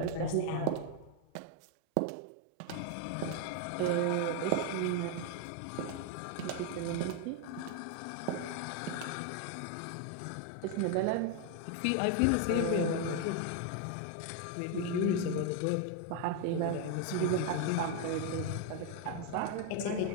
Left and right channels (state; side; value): different; both; correlation 0.01